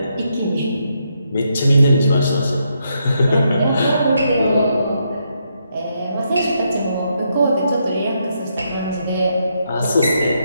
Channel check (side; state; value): both; inverted; correlation -0.78